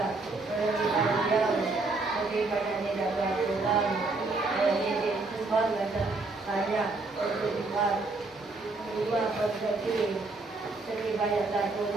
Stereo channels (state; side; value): quieter; left; 3.5 dB